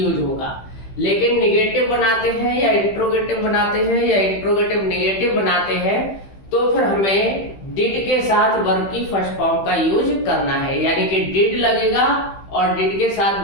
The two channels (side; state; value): right; late; 15 ms